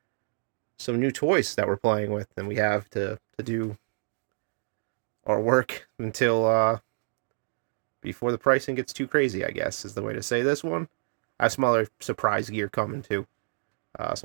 some new toys that we're playing with, and we have to do our work until before the pricing gets too crazy, I guess, is the way to say this one. I have some other surprise gear coming too.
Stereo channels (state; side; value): silent; left; digital silence